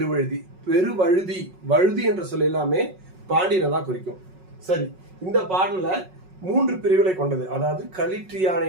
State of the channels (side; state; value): left; late; 5.4 ms